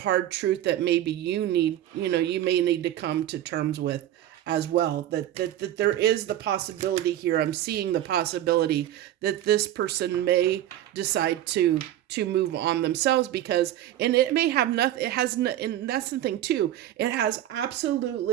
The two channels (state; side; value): quieter; left; 12.7 dB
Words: truth that maybe you may need to come to terms with as well, that there is the possibility here. I'm seeing the possibility that this person may decide to move on themselves, because, and it may have nothing, and that's the thing too, it has